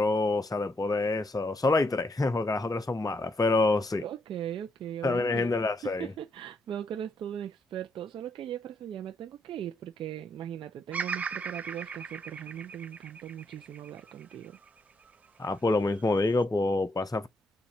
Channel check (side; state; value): both; normal; correlation 0.76